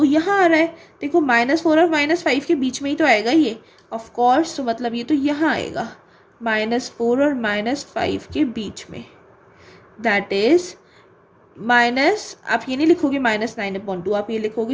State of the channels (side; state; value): both; identical; correlation 1.00